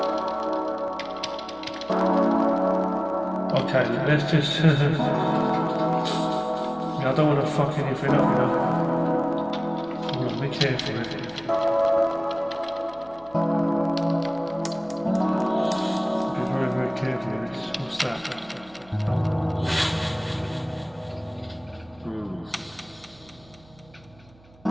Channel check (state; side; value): noise; right; hum, 27 dB below the sound